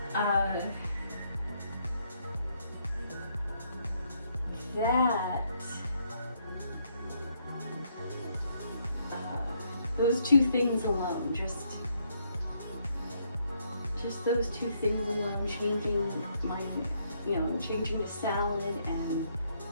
those two things alone, just those two things alone, changing to salad and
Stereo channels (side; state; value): both; inverted; correlation -0.73